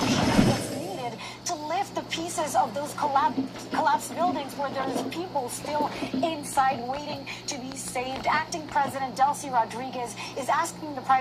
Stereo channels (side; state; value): both; identical; correlation 1.00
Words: machinery that's needed to lift the pieces of those collapsed buildings where there's people still inside waiting to be saved. Acting President Delcy Rodriguez is asking the